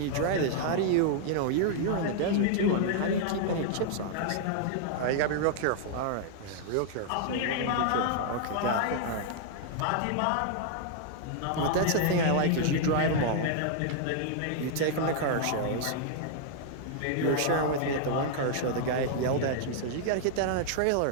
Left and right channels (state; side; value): different; both; correlation -0.01